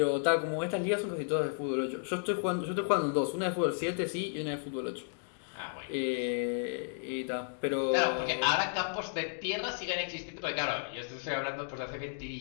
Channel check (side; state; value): right; silent; digital silence